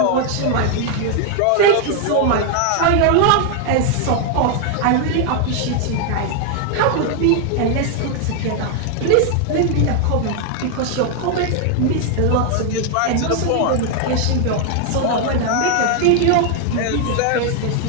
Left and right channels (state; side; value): different; both; correlation 0.00